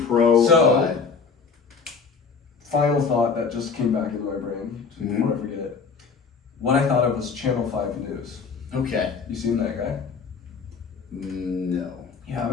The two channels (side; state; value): right; quieter; 5.3 dB